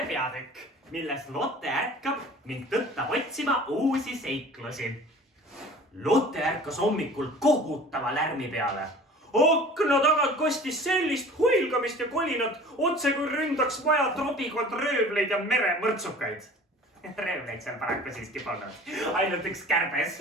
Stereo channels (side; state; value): both; normal; correlation 0.44